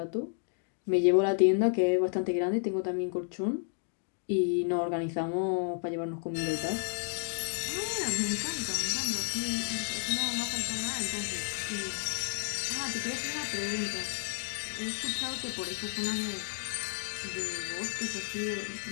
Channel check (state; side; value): silent; right; 56 dB below the other